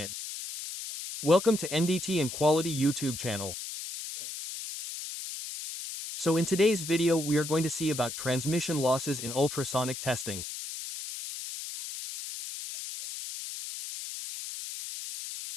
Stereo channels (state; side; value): noise; left; hiss, 8 dB below the sound